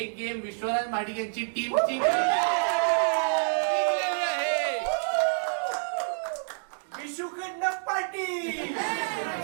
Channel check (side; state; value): left; silent; digital silence